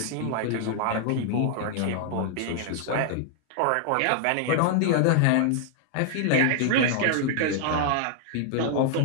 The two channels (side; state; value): both; different; correlation 0.00